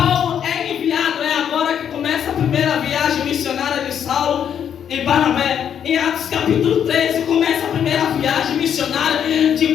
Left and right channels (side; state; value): right; quieter; 8.7 dB